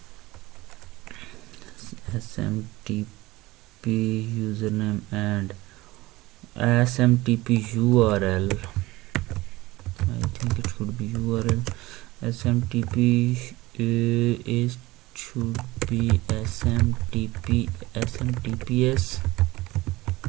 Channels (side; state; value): left; quieter; 19.5 dB